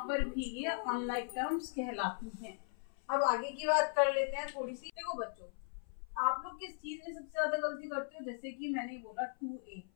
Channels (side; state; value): right; silent; 52 dB below the other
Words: पर भी ये अनलाइक टर्म्स कहलाती हैं। अब आगे की बात कर लेते हैं थोड़ी सी। देखो बच्चों, आप लोग किस चीज में सबसे ज्यादा गलती करते हो? जैसे कि मैंने बोला 2A